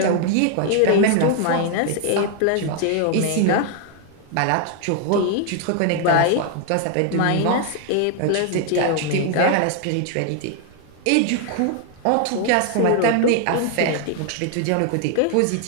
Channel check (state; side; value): different; both; correlation 0.00